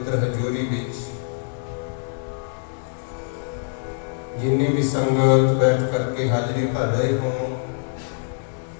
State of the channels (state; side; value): silent; right; digital silence